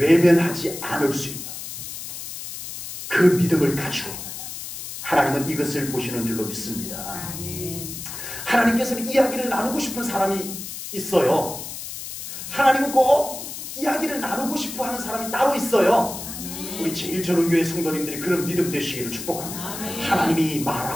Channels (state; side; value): noise; left; hiss, 9 dB below the sound